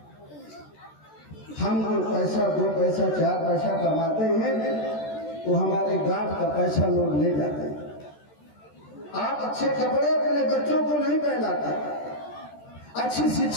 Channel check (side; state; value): right; late; 13 ms